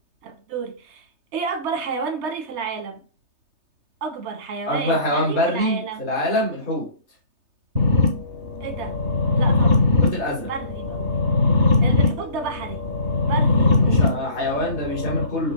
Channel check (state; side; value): late; left; 3.3 ms